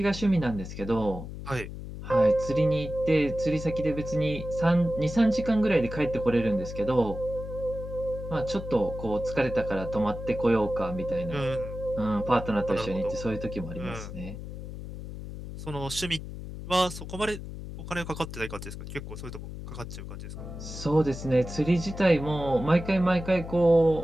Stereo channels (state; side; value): noise; left; hum, 10 dB below the sound